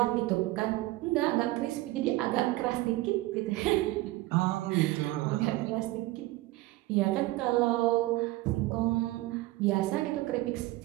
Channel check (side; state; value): left; quieter; 18.6 dB